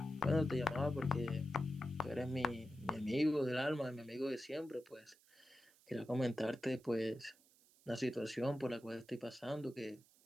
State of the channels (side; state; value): right; noise; hiss, 28 dB below the sound